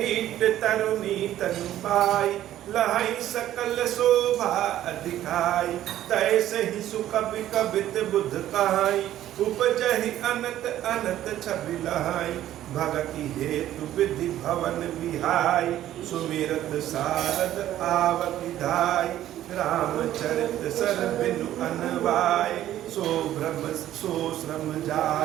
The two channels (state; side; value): quieter; left; 12.7 dB